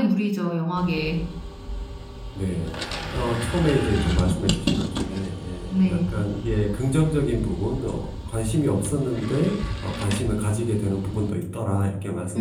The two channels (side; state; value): both; identical; correlation 1.00